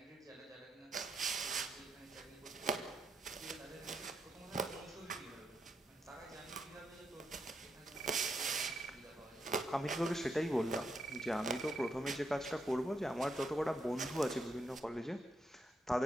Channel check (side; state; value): both; normal; correlation 0.81